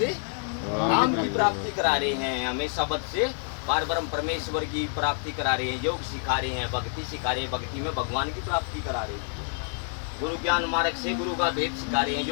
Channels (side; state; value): right; silent; 60 dB below the other